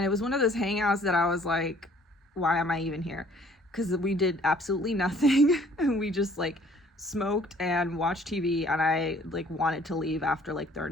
it was one of those hangouts that I was like, why am I even here? Because we did absolutely nothing, and we just like smoked and watched TV, and I like wanted to leave after like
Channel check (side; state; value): both; normal; correlation 0.57